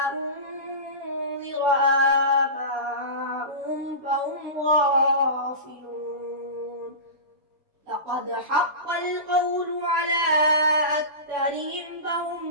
أنذر آباؤهم فهم غافلون. لقد حق القول على أكثرهم فهم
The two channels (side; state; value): left; late; 7.0 ms